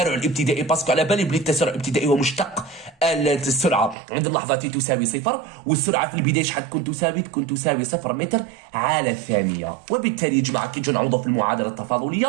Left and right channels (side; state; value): left; drops out; at 4.0 s